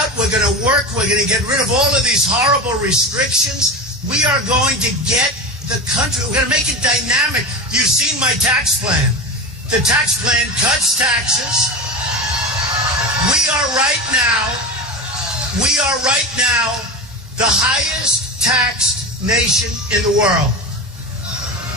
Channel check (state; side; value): normal; both; correlation 0.24